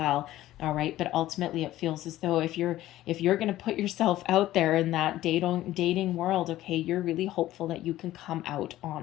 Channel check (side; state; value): right; quieter; 14.9 dB